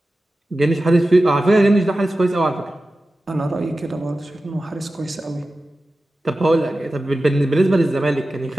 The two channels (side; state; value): both; normal; correlation 0.94